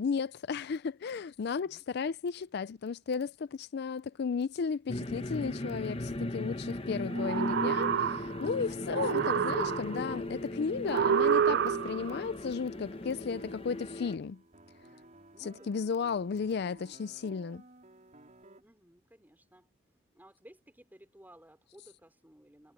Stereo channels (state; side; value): normal; both; correlation 0.06